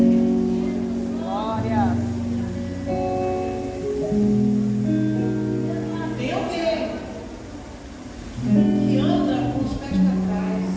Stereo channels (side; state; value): both; identical; correlation 1.00